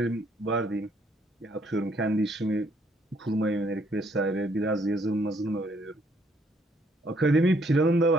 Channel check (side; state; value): both; normal; correlation 0.68